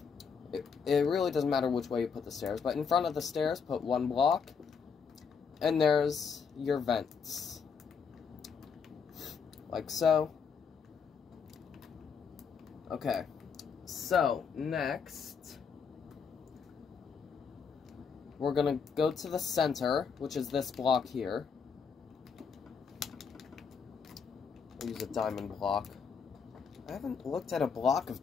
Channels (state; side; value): quieter; right; 6.1 dB